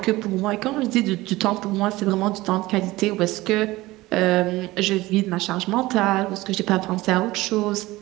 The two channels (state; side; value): quieter; left; 19.0 dB